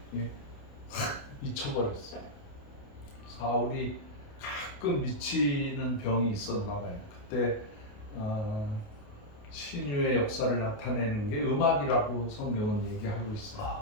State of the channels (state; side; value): late; right; 28 ms